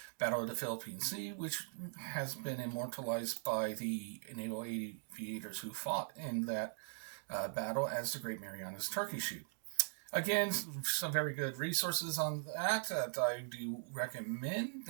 Battle of the Philippine Sea, which has been immortalized by the naval aviators who fought in that battle as the Great Marianas Turkey Shoot. Again, some very good resources on that I do recommend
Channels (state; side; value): silent; left; digital silence